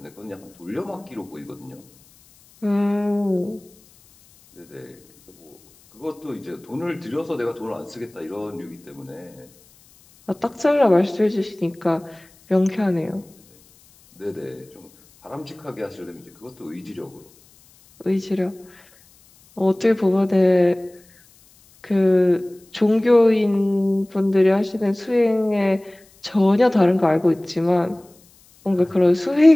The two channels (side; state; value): left; noise; hiss, 29 dB below the sound